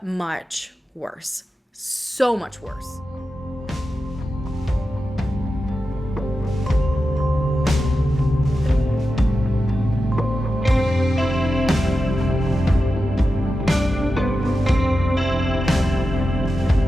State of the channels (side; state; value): both; normal; correlation 0.91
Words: much worse. So much worse.